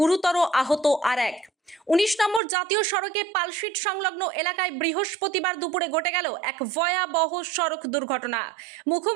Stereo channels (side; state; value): left; drops out; at 2.4 s